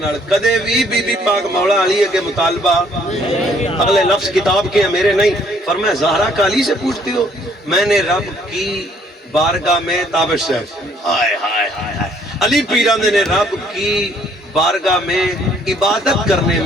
کدے بھی بی بی پاک مولا علی کے مطالبہ اگلے لفظ کتاب کے ہیں میرے نہیں. فرمایا زہرا کا علی سے پوچھتی ہو میں نے رب کی بارگاہ میں تابش ہے ہائے ہائے ہائے علی پیران نے رب کی بارگاہ میں عبادت کرنے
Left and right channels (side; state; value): both; normal; correlation 0.64